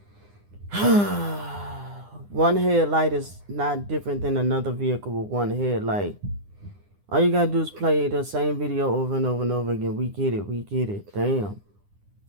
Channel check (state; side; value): late; left; 9.8 ms